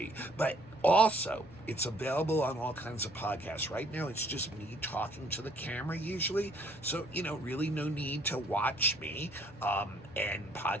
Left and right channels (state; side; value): normal; both; correlation 0.62